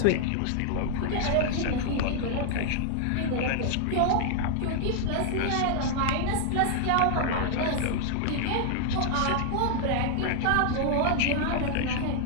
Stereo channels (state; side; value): different; both; correlation 0.00